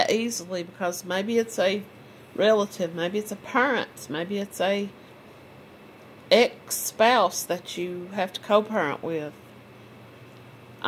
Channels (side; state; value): both; identical; correlation 1.00